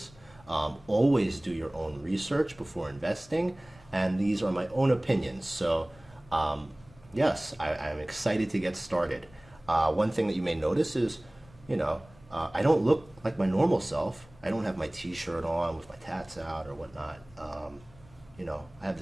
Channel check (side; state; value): left; noise; rumble, 25 dB below the sound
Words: Always do your own research before investing, and these are my own opinions. So, yes, I'm excited to get started. One thing that you may notice is, I don't look like my normal self. I don't have my t-shirt on with my tats out or whatnot. I have